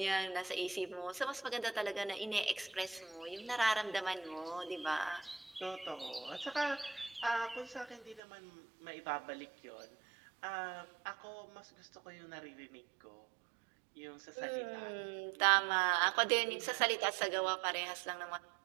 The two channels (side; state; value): left; drops out; at 8.2 s